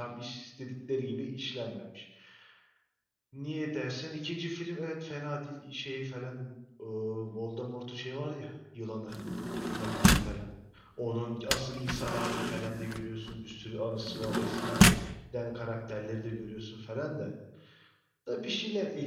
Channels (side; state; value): both; identical; correlation 1.00